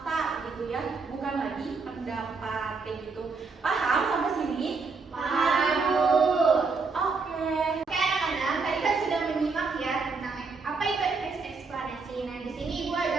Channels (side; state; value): left; quieter; 4.5 dB